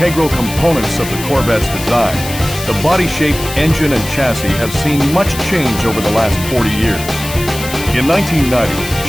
components of the Corvette's design, the body shape, engine, and chassis have seen much change over the last 40 years. In 1990,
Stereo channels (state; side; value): noise; left; hiss, 10 dB below the sound